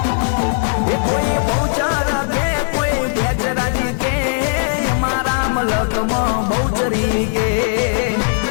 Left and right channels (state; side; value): silent; right; digital silence